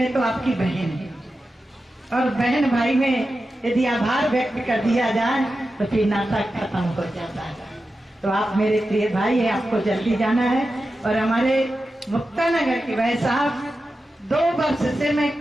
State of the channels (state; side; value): normal; both; correlation 0.91